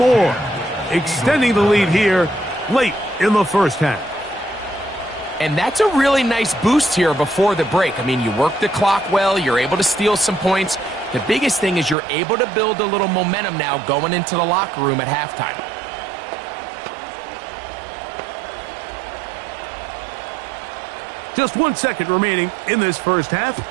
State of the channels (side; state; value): left; drops out; at 12.0 s